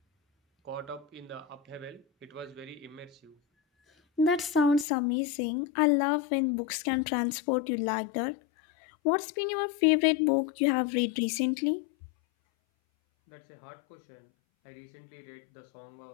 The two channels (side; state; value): right; drops out; at 4.9 s